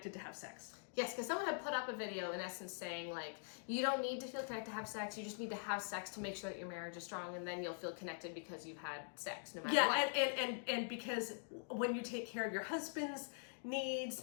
to have sex? Yes, because someone had put up a video in essence saying like, you don't need to feel connected to have sex, you just need to have sex to make sure that your marriage is strong, and then you'll feel connected because you've had sex no matter what. And because when you take care of your husband's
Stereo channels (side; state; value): right; silent; digital silence